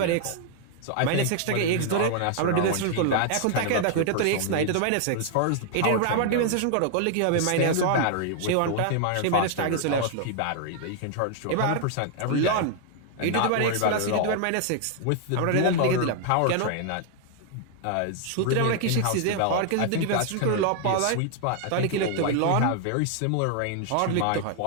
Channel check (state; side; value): different; both; correlation 0.00